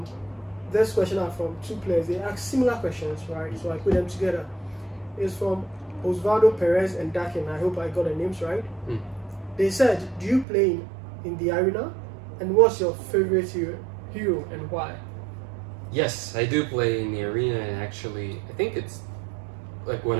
This question are from two players. They ask similar questions, right? So I put them together. It's from Osvaldo Perez and Dakin. I hope I got the names right. They said, "Do you play in the arena? And what's your favorite hero and why?" Yes, I do play in the arena, and actually, I think it's like when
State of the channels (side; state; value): left; drops out; at 10.5 s